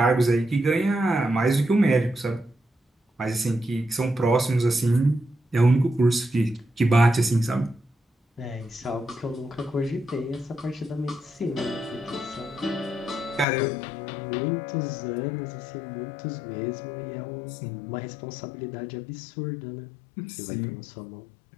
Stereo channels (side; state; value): right; drops out; at 13.5 s